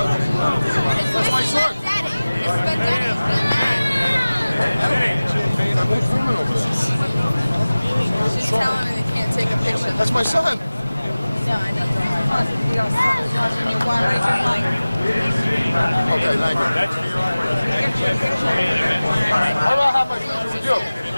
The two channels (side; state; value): both; inverted; correlation -0.99